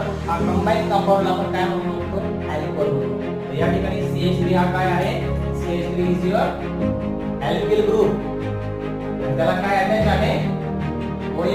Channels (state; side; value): identical; both; correlation 1.00